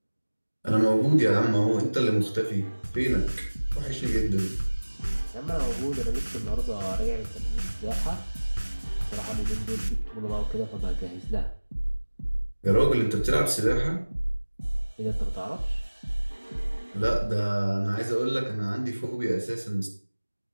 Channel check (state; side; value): inverted; both; correlation -1.00